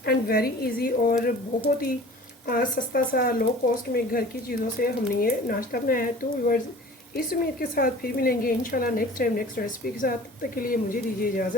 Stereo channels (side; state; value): both; normal; correlation 0.44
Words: एंड वेरी इजी, और बहुत ही सस्ता सा लो कॉस्ट में घर की चीज़ों से हमने ये नाश्ता बनाया है। तो व्यूअर्स, इस उम्मीद के साथ फिर मिलेंगे इंशाल्लाह नेक्स्ट टाइम नेक्स्ट रेसिपी के साथ। तब तक के लिए मुझे दीजिए